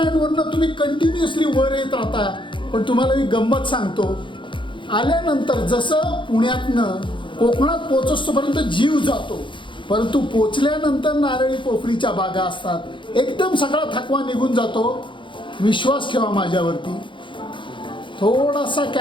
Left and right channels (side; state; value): right; late; 0.24 ms